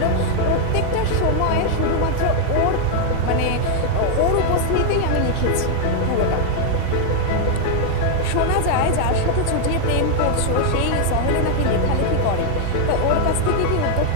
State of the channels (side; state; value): both; different; correlation 0.00